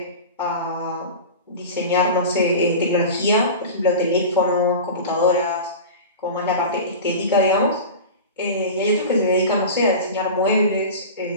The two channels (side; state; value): both; inverted; correlation -0.31